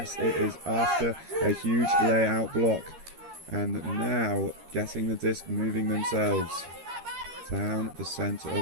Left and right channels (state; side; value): late; left; 13 ms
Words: it is after a huge layout block. And now getting the disc moving themselves down the center